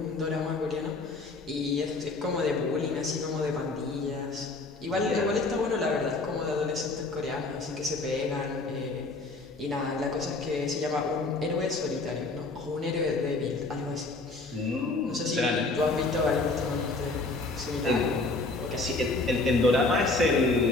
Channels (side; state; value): right; quieter; 3.4 dB